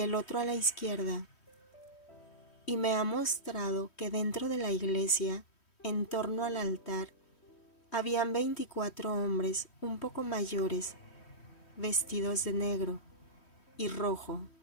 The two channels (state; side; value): late; right; 3.1 ms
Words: otro a la izquierda. Y me ha mostrado que dentro de la iglesia, en torno al altar, habían 24 hombres un poco mayores, vestidos de negro y rojo,